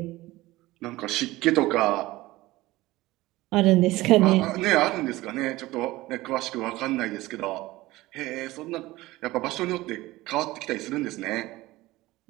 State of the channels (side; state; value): left; quieter; 18.6 dB